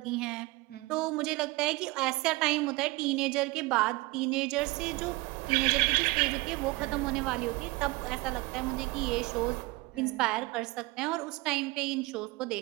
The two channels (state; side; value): quieter; left; 22.5 dB